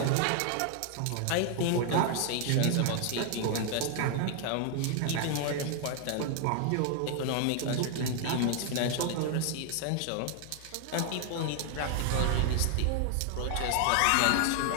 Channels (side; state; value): both; different; correlation 0.00